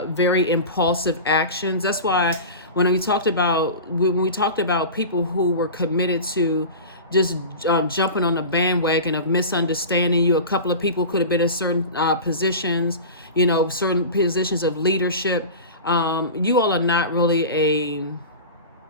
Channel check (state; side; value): inverted; both; correlation -0.31